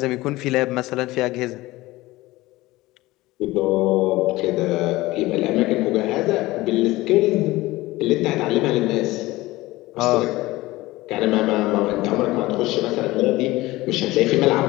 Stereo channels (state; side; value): quieter; right; 18.9 dB